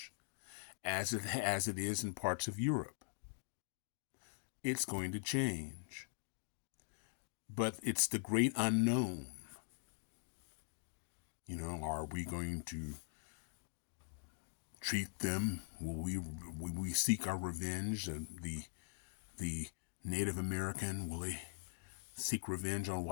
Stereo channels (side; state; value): right; silent; digital silence